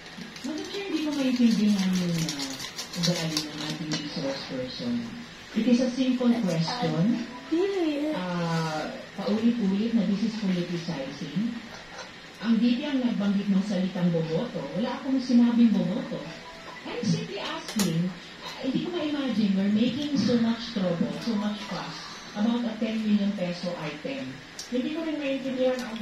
Madam Chair, hindi ko maintindihan yung ugali ng ating resource person. It is a simple question. Paulit-ulit na this is politicizing. Ang DP ang nagbanggit ng salitang boboto. Wala akong sinabing boboto. I'm simply asking, hindi ko ma-imagine we're making so much trouble, so much fuss about a 10 million peso item. Hindi ko rin maintindihan ang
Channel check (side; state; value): both; identical; correlation 1.00